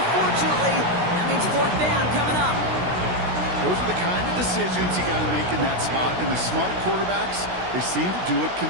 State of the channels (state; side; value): late; left; 16 ms